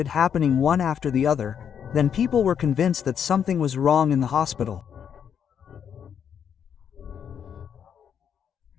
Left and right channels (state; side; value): quieter; right; 8.1 dB